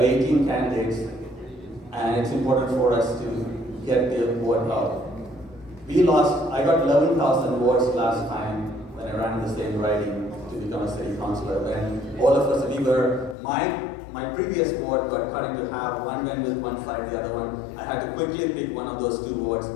18 candidates, and it's important for us to get the vote out. I got 11,000 votes last time when I ran the same riding to become a city councillor. And all of us, we were my previous ward got cut into half. One went with one side, the other one. I had to quickly pick one of those two wards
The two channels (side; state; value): right; drops out; at 13.4 s